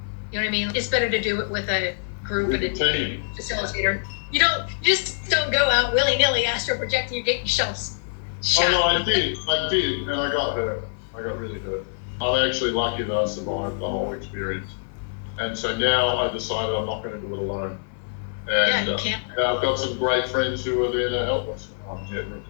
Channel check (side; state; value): right; silent; 62 dB below the other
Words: You know what I mean? It's better to do it with a group and a team. Facilitator. You just don't go out willy-nilly astral projecting. You get yourself shot. Oh no, I did, and I got hurt. I got really hurt. I'm actually lucky that I survived the whole experience. And so now I decided I'm not going to do it alone. And yeah, you can't. I've got some great friends who are there to help us. I'm yet